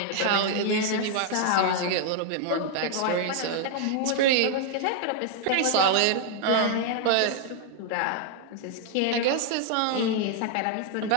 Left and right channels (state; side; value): different; both; correlation 0.00